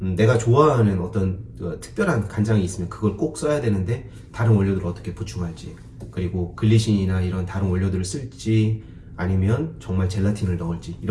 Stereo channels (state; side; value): identical; both; correlation 1.00